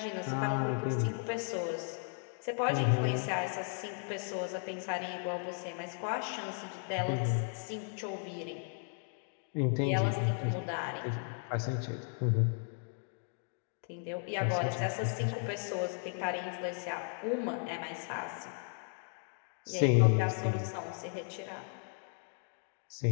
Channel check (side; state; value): right; silent; 54 dB below the other